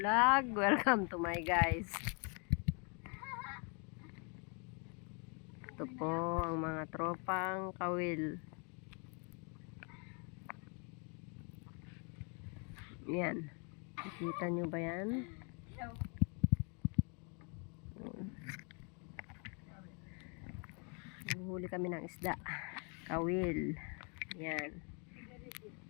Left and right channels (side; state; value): right; quieter; 36.3 dB